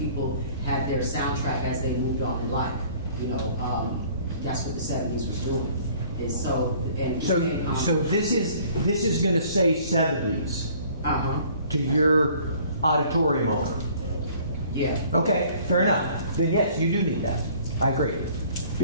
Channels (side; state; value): both; inverted; correlation -0.54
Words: had their soundtrack as they moved on in life. You know, that's what the '70s was doing. So this is going to say '70s. To your auditorium owner. Yeah. Okay, fair enough. Then yes, you do need that. I agree.